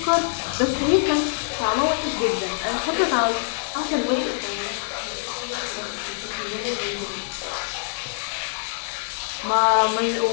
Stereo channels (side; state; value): right; silent; 62 dB below the other